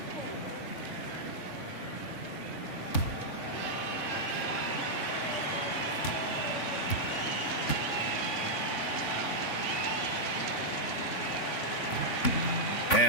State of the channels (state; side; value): late; right; 3.5 ms